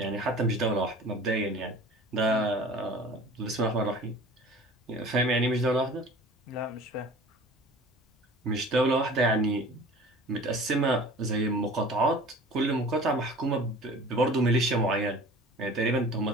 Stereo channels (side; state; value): both; normal; correlation 0.43